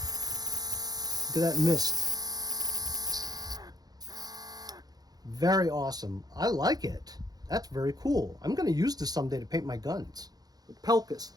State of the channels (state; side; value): late; left; 0.19 ms